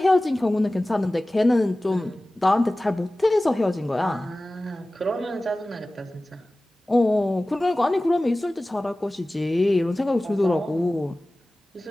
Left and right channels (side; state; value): both; normal; correlation 0.97